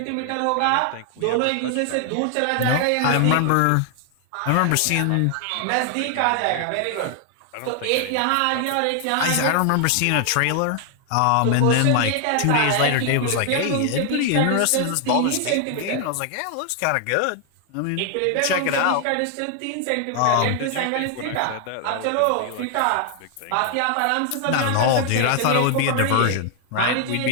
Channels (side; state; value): both; different; correlation 0.00